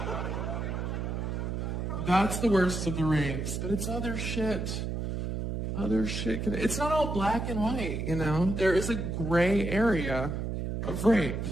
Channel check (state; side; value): noise; right; hum, 3 dB below the sound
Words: That's the worst of the rapes, but it's other shit. Other shit. It's not all black and white, you know? There is a gray area of rape.